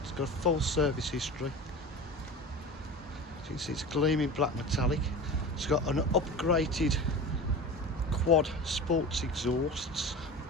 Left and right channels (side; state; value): both; normal; correlation 0.32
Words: It's got a full service history. As you can see, it's gleaming black metallic. It's got an upgraded quad sports exhausts,